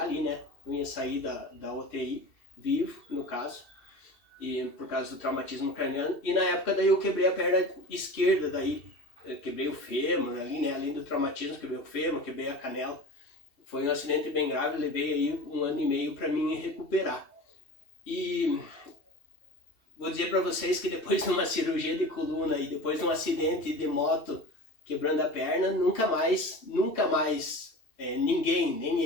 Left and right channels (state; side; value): late; right; 2.7 ms